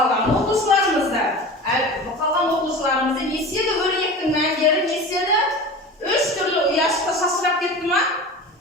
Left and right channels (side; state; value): both; normal; correlation 0.33